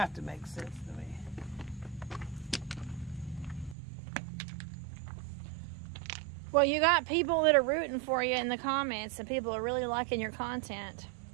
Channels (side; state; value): left; drops out; at 3.8 s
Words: to make sense to me. Well, you got people that are rooting for you in the comments, and people are really liking your content.